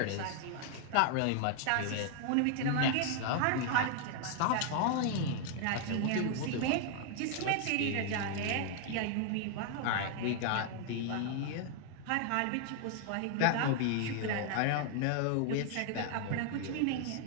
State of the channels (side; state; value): both; different; correlation 0.00